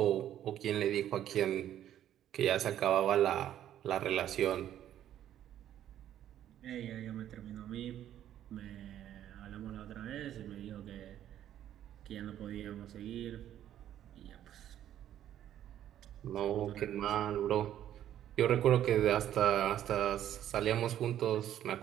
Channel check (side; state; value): left; quieter; 11.3 dB